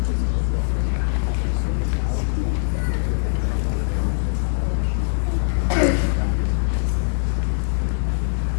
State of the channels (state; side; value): silent; right; digital silence